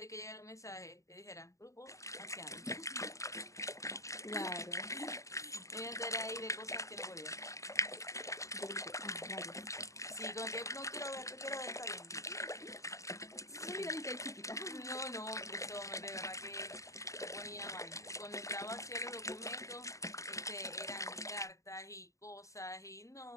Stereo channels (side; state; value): right; late; 0.15 ms